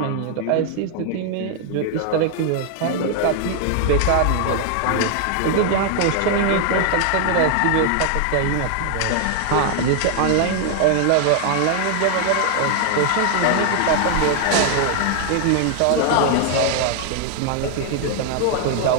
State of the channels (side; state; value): both; different; correlation 0.00